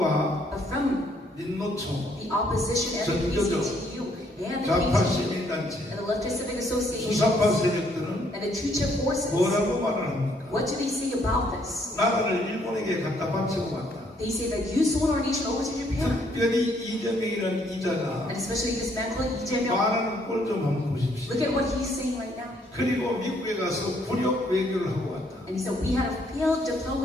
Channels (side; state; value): both; normal; correlation 0.68